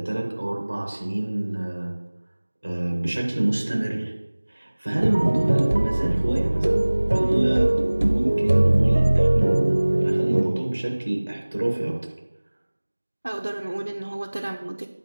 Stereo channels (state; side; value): inverted; both; correlation -1.00